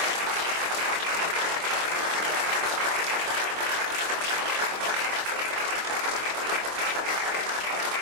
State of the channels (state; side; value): late; left; 25 ms